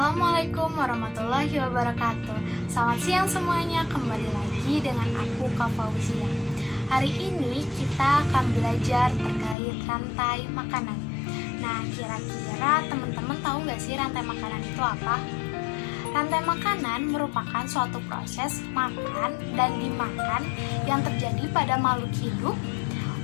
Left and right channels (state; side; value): drops out; right; at 9.6 s